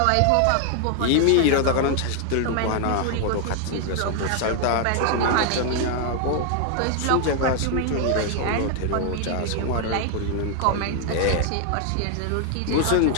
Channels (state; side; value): different; both; correlation 0.00